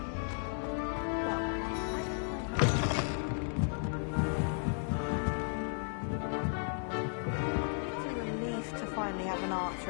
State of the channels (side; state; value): right; silent; 55 dB below the other